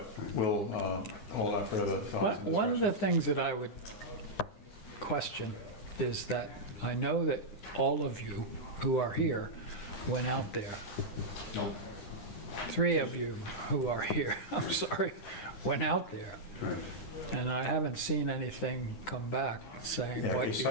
we'll hold on further thoughts. and One of the discussions. things that I would question is that I know that all of you who are here went out there. Nope. 3 of you who are here, I'm sorry, went out there. Right. And I haven't seen anything come back saying Yeah, a what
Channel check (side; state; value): right; late; 9.9 ms